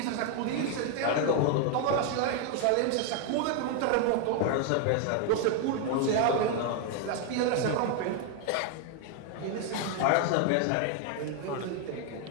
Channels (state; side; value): different; both; correlation 0.00